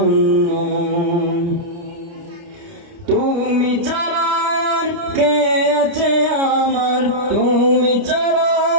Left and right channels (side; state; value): left; late; 29 ms